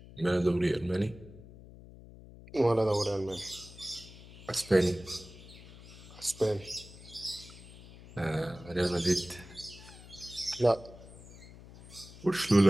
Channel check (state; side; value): noise; left; hum, 18 dB below the sound